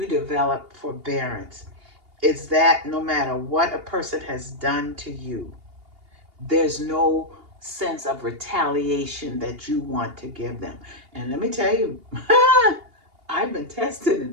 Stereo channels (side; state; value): left; late; 2.8 ms